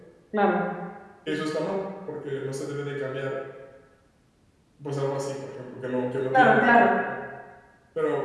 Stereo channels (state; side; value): identical; both; correlation 1.00